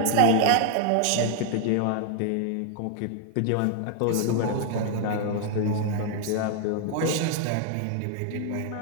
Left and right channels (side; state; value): both; different; correlation 0.00